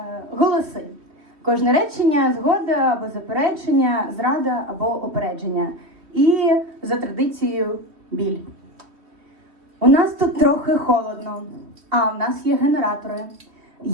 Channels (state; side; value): late; left; 3.1 ms